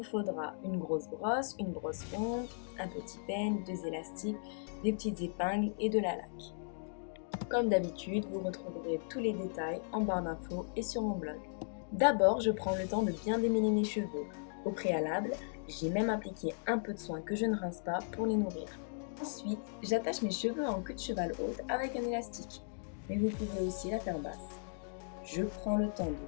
faudra une grosse brosse, une brosse ronde, un petit peigne, deux élastiques, des petites épingles et de la laque. Comme d'habitude, vous retrouverez tous les détails en barre d'infos et sur mon blog. D'abord, je prends le temps de bien démêler mes cheveux. Au préalable, j'ai même appliqué un peu de soin que je ne rince pas pour les nourrir. Ensuite, j'attache mes cheveux en queue de cheval haute avec un élastique, mais vous pouvez aussi la faire basse. Je prends le temps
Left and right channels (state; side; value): silent; right; digital silence